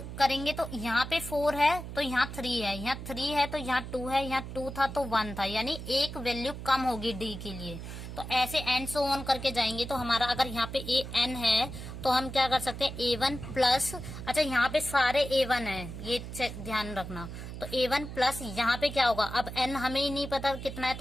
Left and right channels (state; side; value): noise; right; hum, 9 dB below the sound